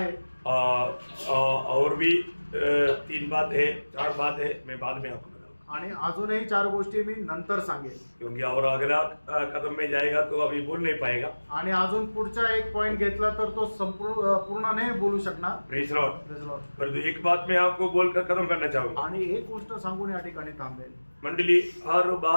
और भी 3 बात है 4 बात है. मैं बाद में आपको बताऊंगा. आणि अजूनही 4 गोष्टी मी नंतर सांगेन. क्योंकि और अगला कदम में जाएगा तो अभी बोल नहीं पाएगा. आणि अजून पुढचा एक पॉइंट घेतला तर तो पूर्ण नाही बोलू शकणार. Praise Lord. परंतु एक बात मैं आपको बोलकर खत्म करना चाहूंगा. आणि एक गोष्ट सांगून या ठिकाणी थांबेल. मंडली हर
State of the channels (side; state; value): both; inverted; correlation -1.00